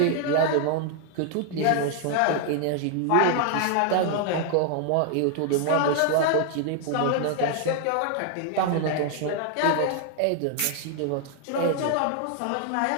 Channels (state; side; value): different; both; correlation 0.00